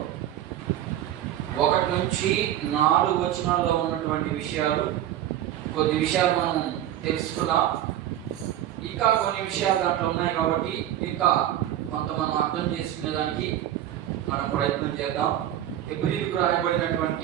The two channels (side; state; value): left; quieter; 12.1 dB